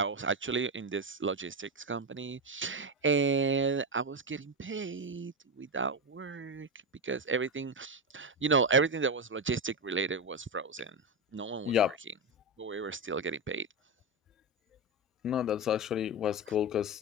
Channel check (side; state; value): both; normal; correlation 0.13